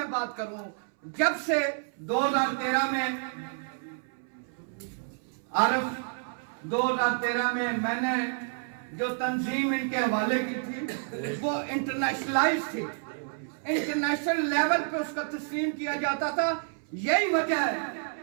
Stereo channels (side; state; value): left; silent; 58 dB below the other